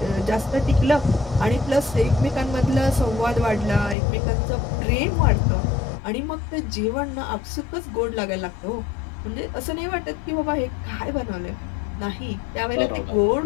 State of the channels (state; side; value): drops out; right; at 4.0 s